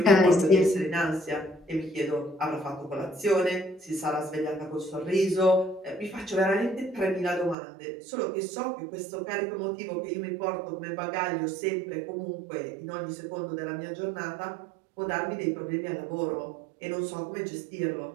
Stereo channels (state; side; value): drops out; left; at 7.6 s